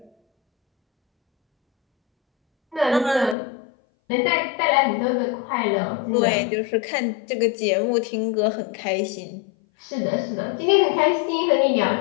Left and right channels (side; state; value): right; drops out; at 3.4 s